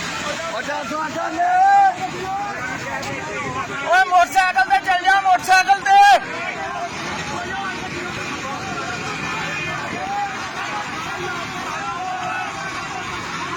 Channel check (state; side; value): identical; both; correlation 1.00